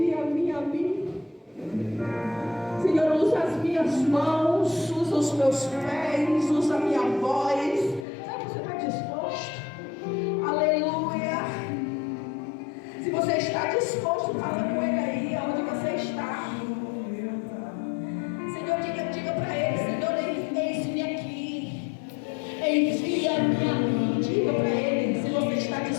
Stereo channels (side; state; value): right; drops out; at 8.1 s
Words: a mim. Senhor, usa as minhas mãos, usa os meus pés, usa a minha voz. Será que você está disposto? Aleluia. Se você está disposto, fala com ele aí, onde você está. Senhor, diga para ele: Senhor, eis-me aqui, envia-me a mim. Diga para ele, se você está